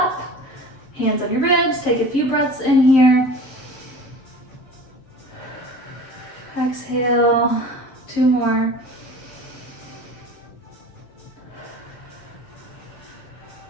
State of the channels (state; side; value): late; right; 7.7 ms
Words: hands on your ribs, take a few breaths in here. Exhale, 2 more.